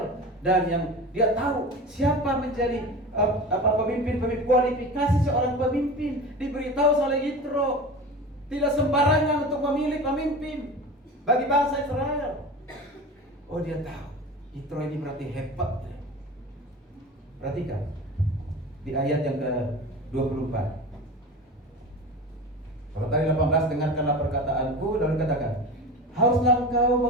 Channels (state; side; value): normal; both; correlation 0.32